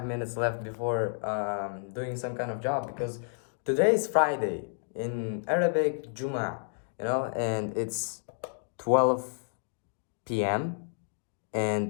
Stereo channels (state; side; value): silent; right; digital silence